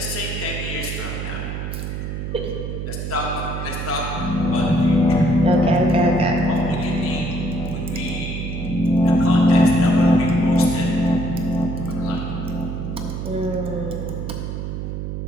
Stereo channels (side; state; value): right; noise; hum, 5 dB below the sound